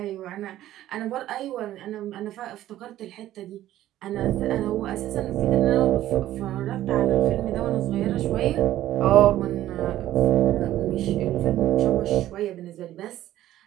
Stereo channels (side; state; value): left; quieter; 13.7 dB